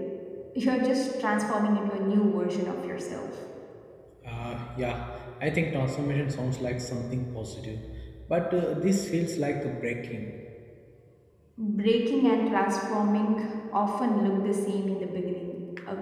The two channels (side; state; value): both; identical; correlation 1.00